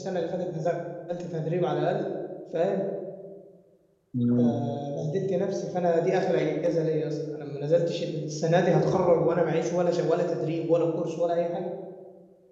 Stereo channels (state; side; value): identical; both; correlation 1.00